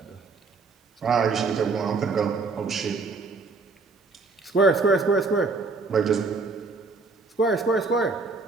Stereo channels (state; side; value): quieter; left; 4.0 dB